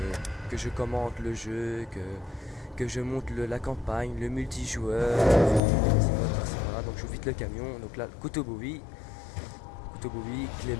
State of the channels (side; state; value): right; drops out; at 5.6 s